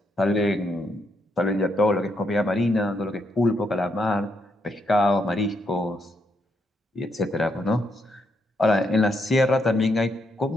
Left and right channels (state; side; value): normal; both; correlation 0.78